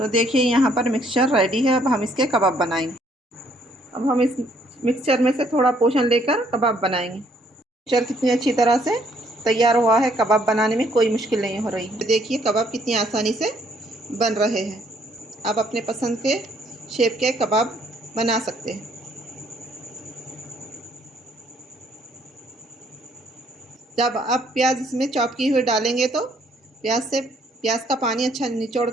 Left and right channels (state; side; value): normal; both; correlation 0.66